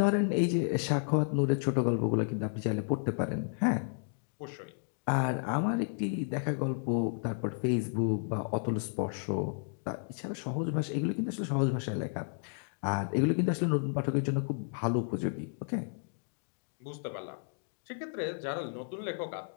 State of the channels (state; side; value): silent; right; digital silence